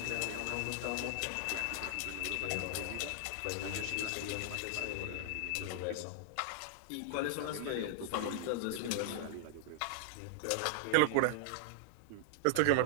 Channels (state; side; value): different; both; correlation -0.01